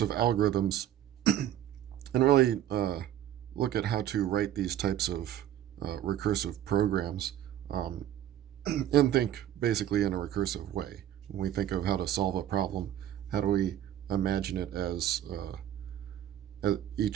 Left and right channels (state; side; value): quieter; left; 11.5 dB